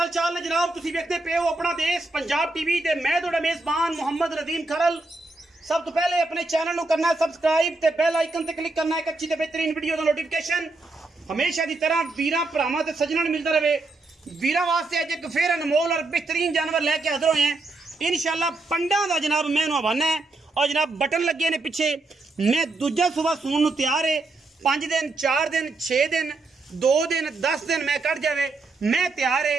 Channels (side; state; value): left; quieter; 3.3 dB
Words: चाल ने जनाब तुसी देखते पे हो अपना देश पंजाब टीवी ते मैं तुहाडा मेजबान मोहम्मद रदीम खरल। सब तो पहले अपने चैनल को करना है सबसक्राइब ते बेल आइकन ते क्लिक करना है एक अच्छी ते बेहतरीन वीडियो दा नोटिफिकेशन हमेशा की तरह वीरां भरावां ते सज्जणां मिलता रहे। वीरां वास्ते अज एक फिर अनमोल और बेहतरीन जानवर लैके हाजिर होए हैं इंशाल्लाह। पंडा दा जनाब मैं हवाना है और जनाब बटन लगे ने पिछे। मैं दूजा सुबह सून नूं तैयार है। 5 दिन 4 दिन 6 दिन 2 दिन 10 दिन मैं कट जावे मैं तैयार है।